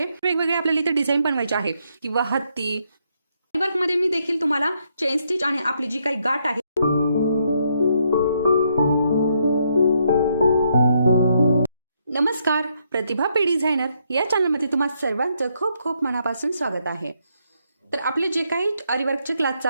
वेगवेगळे आपल्याला इथे डिझाईन बनवायचे आहे किंवा हत्ती वर्क मध्ये मी देखील तुम्हाला चेन स्टिच आणि आपली जी काही गाठ आहे। नमस्कार, प्रतिभा पी डिझायनर या चॅनलमध्ये तुम्हा सर्वांचं खूप खूप मनापासून स्वागत आहे। तर आपले जे काही आरीवर्कचे क्लास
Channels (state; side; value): inverted; both; correlation -0.75